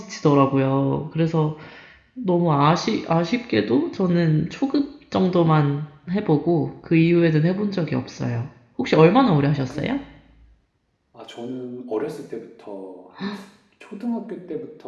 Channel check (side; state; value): both; identical; correlation 1.00